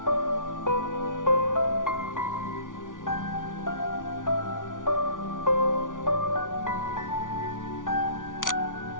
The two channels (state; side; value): late; right; 0.88 ms